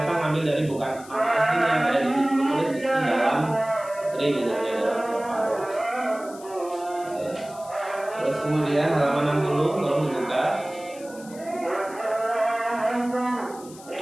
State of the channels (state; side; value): noise; left; hiss, 20 dB below the sound